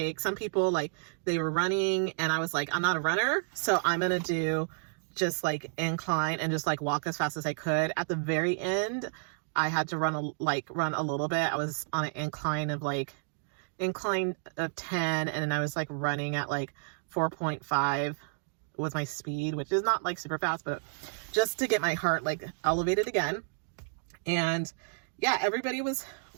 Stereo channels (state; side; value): silent; left; digital silence